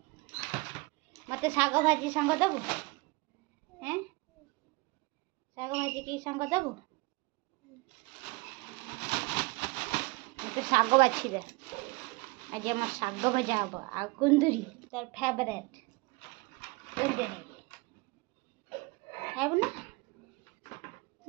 मत शाग भाजी सांग देबू हैं शाग भाजी की सांग देबू तो शाग बाछी दे आज आम शाग भजा हम आ कुंदरी तार फेवरेट खाइब ना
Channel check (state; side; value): quieter; left; 25.5 dB